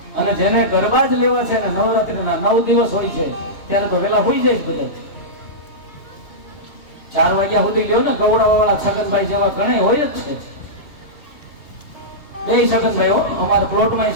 અને જેને ગરબા જ લેવા છે ને નવરાત્રીના 9 દિવસ હોય છે ત્યારે તો વેલા હોઈ જાય બધા. 4 વાગ્યા સુધી લ્યો ને ગવડાવાળા છગનભાઈ જેવા ઘણા હોય જ છે. બે છગનભાઈ હો, અમારા પ્લોટમાં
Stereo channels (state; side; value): late; right; 2.8 ms